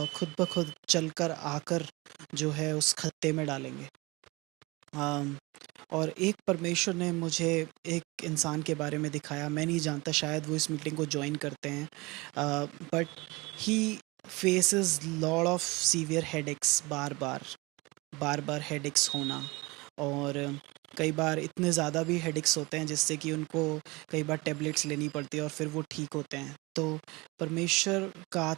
खुद ब खुद चलकर आकर जो है उस खत्ते में डालेंगे। अम, और एक परमेश्वर ने मुझे एक इंसान के बारे में दिखाया, मैं नहीं जानता शायद वो इस मीटिंग को जॉइन करते हैं, but he faces lot of severe headaches, bar bar headaches होना। और कई बार इतने ज़्यादा भी हेडेक्स होते हैं जिससे कि उनको कई बार टेबलेट्स लेनी पड़ती है और फिर वो ठीक होते हैं। तो परमेश्वर का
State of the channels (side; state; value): left; quieter; 24.2 dB